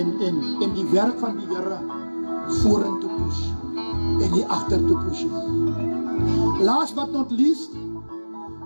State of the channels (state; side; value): inverted; both; correlation -1.00